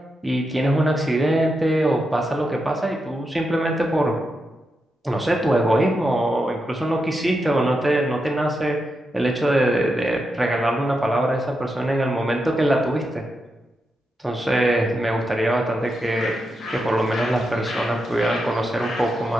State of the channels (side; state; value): both; normal; correlation 0.86